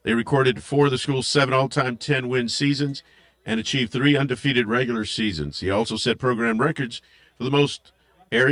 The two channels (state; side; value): identical; both; correlation 1.00